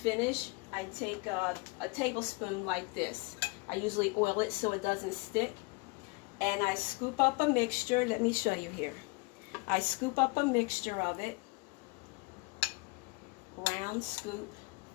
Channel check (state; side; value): quieter; right; 28.8 dB